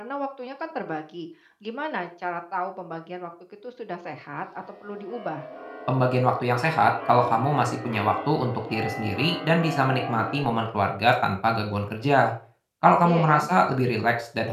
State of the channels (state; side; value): identical; both; correlation 1.00